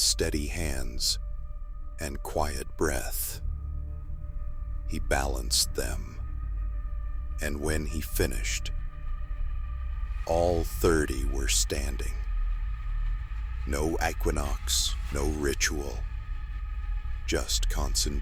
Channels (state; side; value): identical; both; correlation 1.00